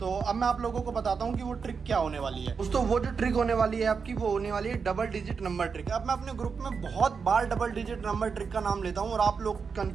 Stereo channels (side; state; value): left; quieter; 5.6 dB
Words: अब मैं आप लोगों को बताता हूँ कि वो ट्रिक क्या होने वाली है। दोस्तों वो जो ट्रिक होने वाली है आपकी, वो होने वाली है डबल डिजिट नंबर ट्रिक। अब मैं अपने ग्रुप में बहुत बार डबल डिजिट नंबर ट्रिक का नाम लेता हूँ और आप लोग